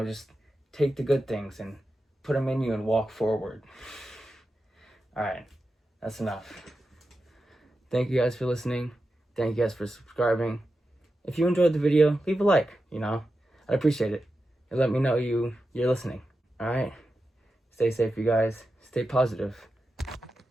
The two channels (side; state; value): both; normal; correlation 0.90